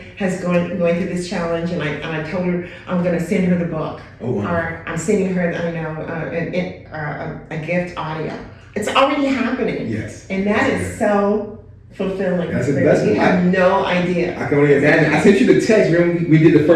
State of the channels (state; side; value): identical; both; correlation 1.00